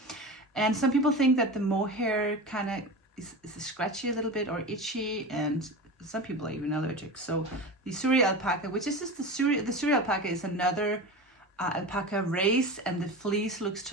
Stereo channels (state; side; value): normal; both; correlation 0.28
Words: And some people think that the mohair kind of is scratchy a little bit or itchy, and some people are even allergic. So the Suri alpaca, which is just the Suri alpaca is another alpaca race, and the fleece looks